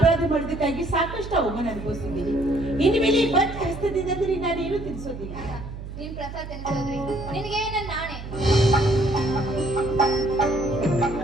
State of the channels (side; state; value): right; noise; hum, 10 dB below the sound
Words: ಮಾಡಿದ್ದಕ್ಕಾಗಿ ಸಾಕಷ್ಟು ಅವಮಾನ ಅನುಭವಿಸಿದ್ದೀನಿ. ಇನ್ನು ಮೇಲೆ ಈ ಬಂದ ಹಸ್ತದಿಂದ ನಾನೇನು ತಿನ್ಸೋದಿಲ್ಲ. ನೀನ್ ಪ್ರಸಾದ ತಿನ್ಸೋದ್ರಿ ನಿನಗೆ ನನ್ನ ನಾಣೆ.